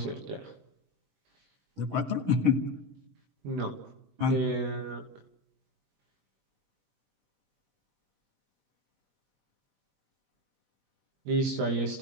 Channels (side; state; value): left; late; 21 ms